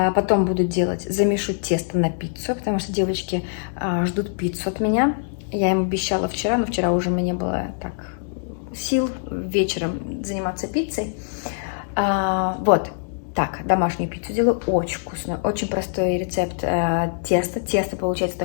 буду замешу тесто на пиццу, потому что девочки ждут пиццу от меня. Я им обещала вчера, но вчера уже у меня не было так сил вечером заниматься пиццей. Вот. Так, домашнюю пиццу делаю, очень вкусную, очень простой рецепт теста. Тесто получается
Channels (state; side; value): silent; right; 62 dB below the other